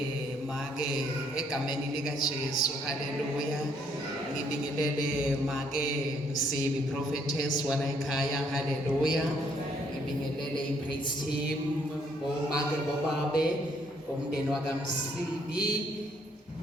make egameni lika Jesu haleluya ngibingelele make Msibi prophetess wala ekhaya haleluya ngibingelele ipraise team omake bobabe umndeni wakamsibi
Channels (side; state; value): both; normal; correlation 0.68